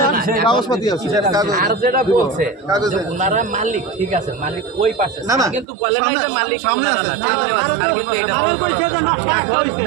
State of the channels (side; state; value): left; drops out; at 5.7 s